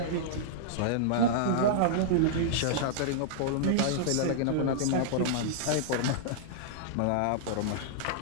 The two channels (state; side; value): different; both; correlation -0.02